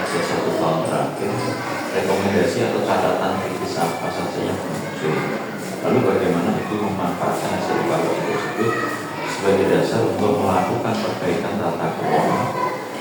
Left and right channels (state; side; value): identical; both; correlation 1.00